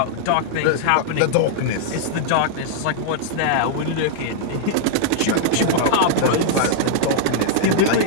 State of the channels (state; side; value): different; both; correlation -0.01